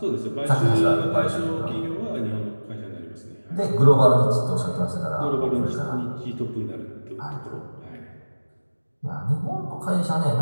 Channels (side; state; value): both; inverted; correlation -1.00